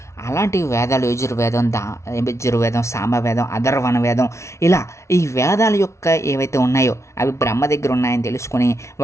అలాంటి వేదాలు యజుర్వేదం, సామవేదం, అథర్వణ వేదం, ఇలా ఈ వేదాల యొక్క ఏవైతే ఉన్నాయో అవి బ్రహ్మ దగ్గర ఉన్నాయని తెలుసుకుని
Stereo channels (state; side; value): late; right; 0.13 ms